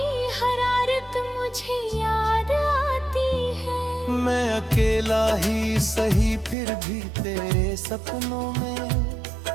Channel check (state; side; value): drops out; left; at 6.6 s